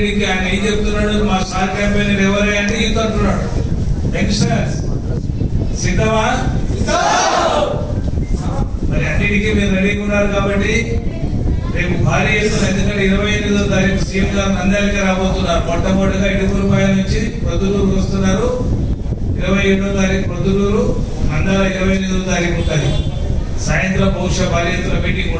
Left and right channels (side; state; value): both; identical; correlation 1.00